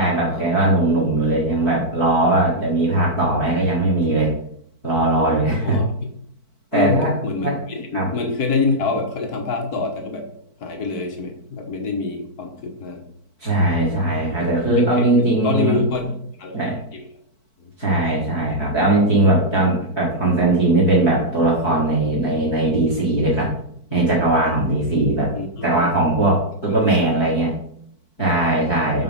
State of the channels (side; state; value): right; late; 4.5 ms